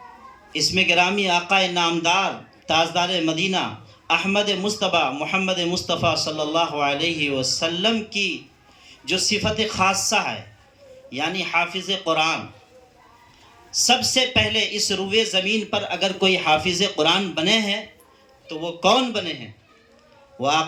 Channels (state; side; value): identical; both; correlation 1.00